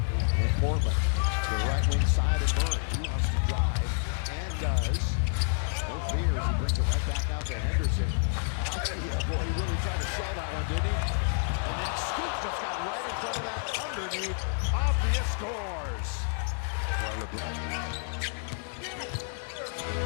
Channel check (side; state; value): right; silent; 58 dB below the other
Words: Portland, to the right wing side of Murray. He wants to drive and does. No fears, he brings it right back out to Henderson. Yeah, boy, he really tried to sell that one, didn't he? And then Scoop just got right in front of that underneath. Avdia scores.